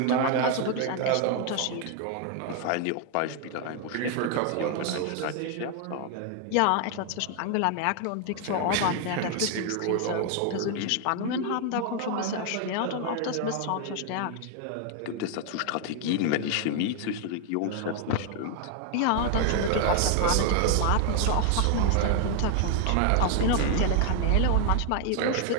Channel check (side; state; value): both; different; correlation 0.00